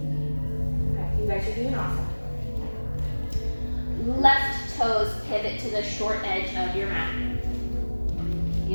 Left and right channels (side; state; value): both; inverted; correlation -1.00